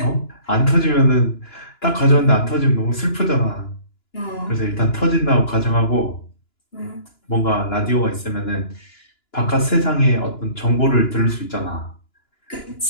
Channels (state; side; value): late; right; 2.9 ms